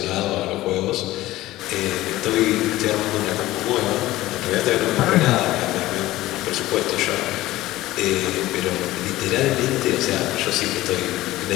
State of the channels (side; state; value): right; quieter; 16.7 dB